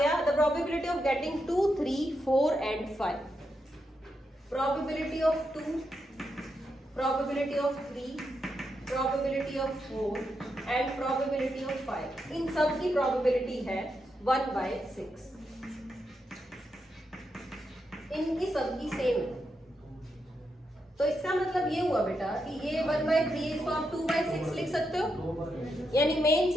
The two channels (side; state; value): both; normal; correlation 0.84